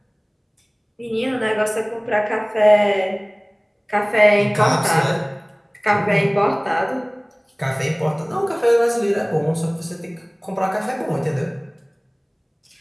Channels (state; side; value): identical; both; correlation 1.00